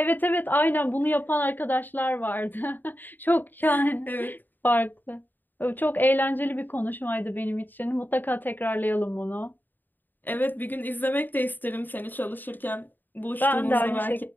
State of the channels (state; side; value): late; right; 0.090 ms